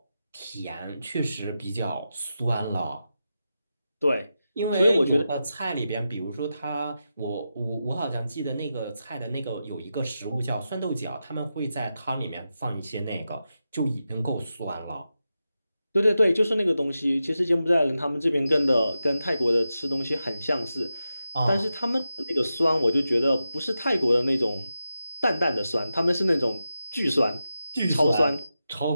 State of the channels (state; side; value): inverted; both; correlation -0.90